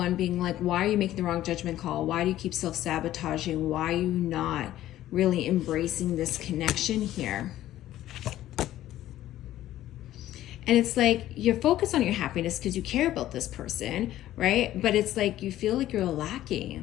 being like, why are you making the wrong judgment call? Why do you keep self-sabotaging? Why are you not really embracing this connection here? And it's like you're focused on your happiness because you care about this person, right? But it's like you feel like you're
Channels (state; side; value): quieter; right; 13.7 dB